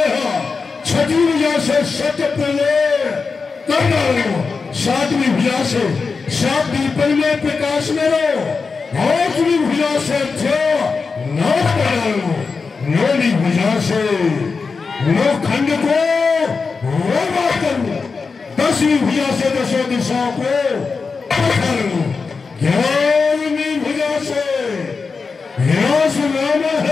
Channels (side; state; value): right; quieter; 4.7 dB